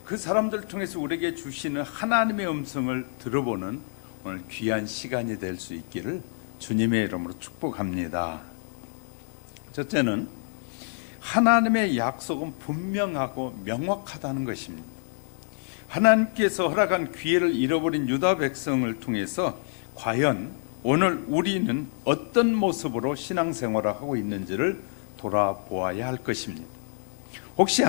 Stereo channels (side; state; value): right; silent; 60 dB below the other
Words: 그 사람들을 통해서 우리에게 주시는 하나님의 음성을 들어보는 오늘 귀한 시간이 될 수 있기를 주님의 이름으로 축복합니다. 첫째는 하나님의 약속은 분명하고 명확하다는 것입니다. 하나님께서 허락한 기회를 잃어버린 유다 백성을 통해서 과연 오늘 우리는 어떤 모습으로 신앙생활을 하고 있는지를 돌아보아야 할 것입니다. 혹시